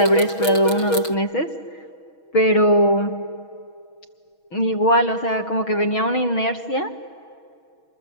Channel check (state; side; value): late; right; 6.3 ms